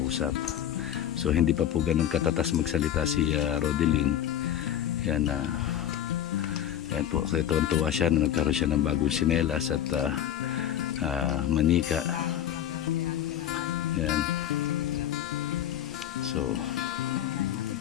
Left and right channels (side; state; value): right; quieter; 10.7 dB